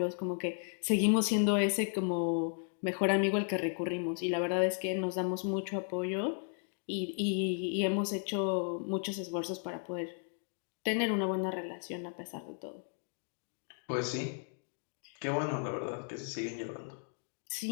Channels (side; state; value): right; silent; 55 dB below the other